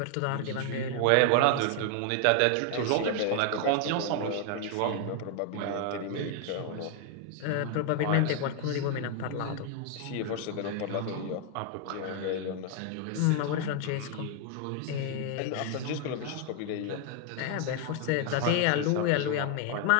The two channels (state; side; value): different; both; correlation 0.00